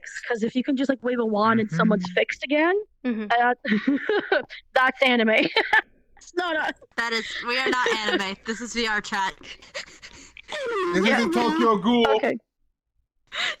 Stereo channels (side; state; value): both; identical; correlation 1.00